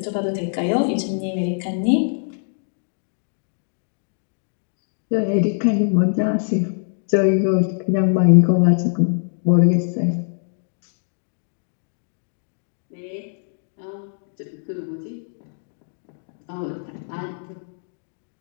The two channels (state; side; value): silent; right; digital silence